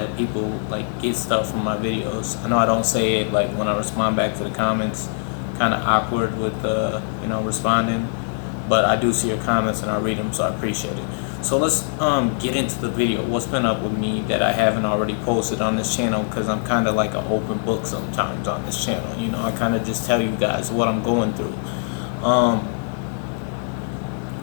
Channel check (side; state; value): right; silent; 60 dB below the other